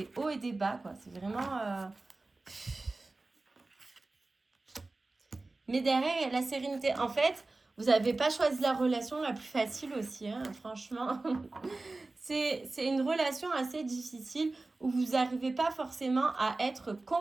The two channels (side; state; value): left; quieter; 3.2 dB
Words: hauts et des bas, quoi. C'est vraiment... Mais derrière, il y a la sérénité. En fait, vous n'avez pas choisi la relation la plus facile aussi, hein, franchement. C'est une relation assez difficile où vous n'arrivez pas forcément à être